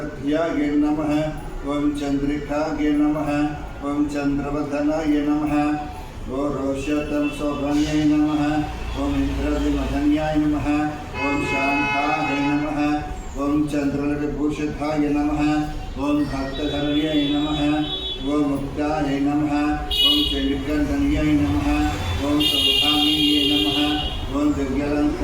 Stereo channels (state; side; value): identical; both; correlation 1.00